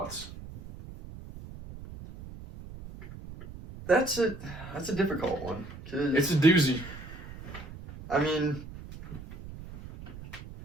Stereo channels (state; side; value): noise; right; rumble, 13 dB below the sound